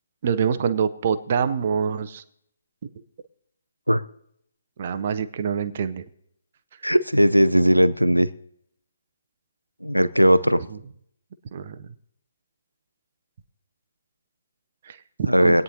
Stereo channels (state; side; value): inverted; both; correlation -0.92